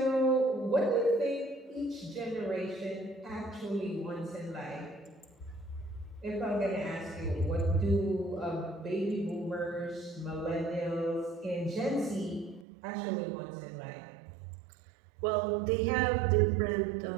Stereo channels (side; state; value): left; drops out; at 12.7 s